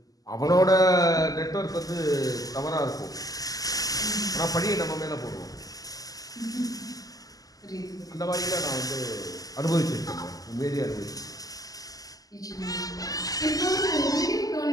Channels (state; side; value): late; right; 0.17 ms